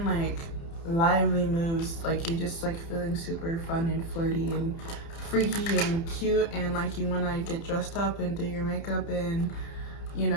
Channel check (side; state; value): right; late; 30 ms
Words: like lively moods, like you're just like feeling super fun and flirty and freaky and cute, and like you want to get dressed up and do your makeup and, you